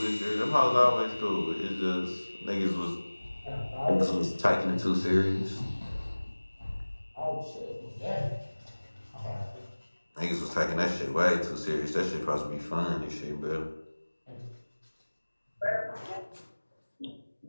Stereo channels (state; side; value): inverted; both; correlation -1.00